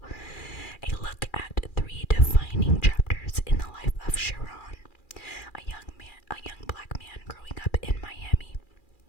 a look at 3 defining chapters in the life of Sharon, a young black man growing up in Miami.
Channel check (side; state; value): right; late; 2.4 ms